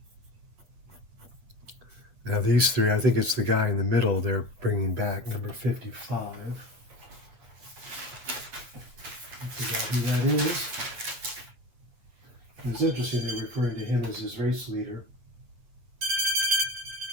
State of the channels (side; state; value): left; late; 9.7 ms